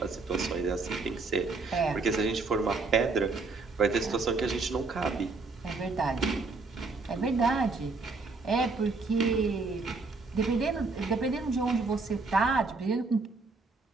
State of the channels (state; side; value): quieter; left; 3.9 dB